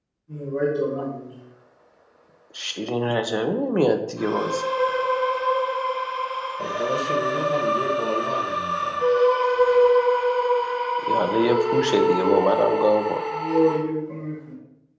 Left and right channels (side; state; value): both; identical; correlation 1.00